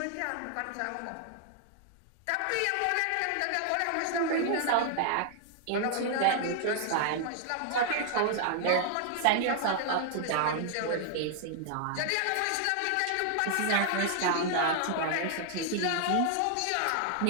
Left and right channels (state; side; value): different; both; correlation 0.00